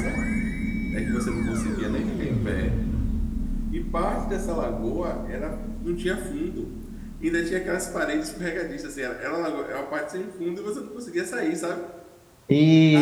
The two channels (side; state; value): both; identical; correlation 1.00